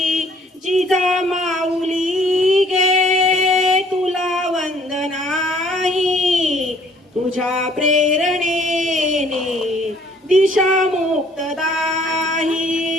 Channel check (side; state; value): both; normal; correlation 0.59